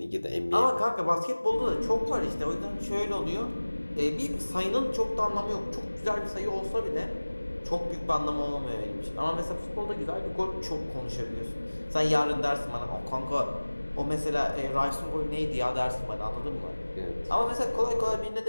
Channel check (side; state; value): both; inverted; correlation -1.00